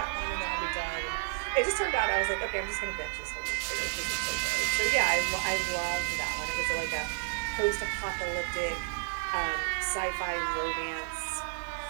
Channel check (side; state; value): left; silent; 57 dB below the other